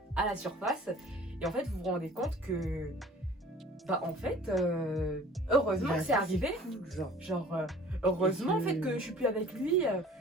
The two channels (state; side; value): normal; both; correlation 0.48